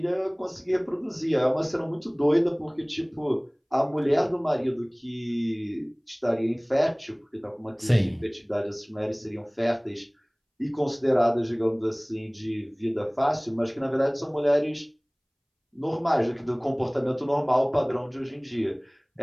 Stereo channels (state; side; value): identical; both; correlation 1.00